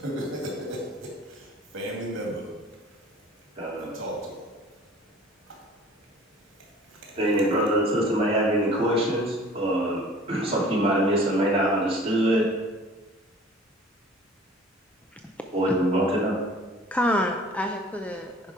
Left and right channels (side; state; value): both; normal; correlation 0.48